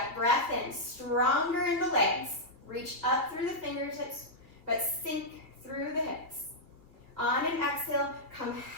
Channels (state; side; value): late; left; 2.4 ms